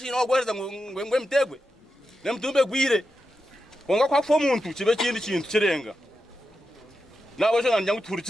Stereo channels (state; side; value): normal; both; correlation 0.89